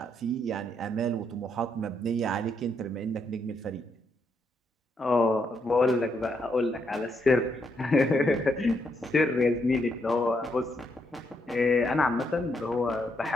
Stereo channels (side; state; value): both; normal; correlation 0.77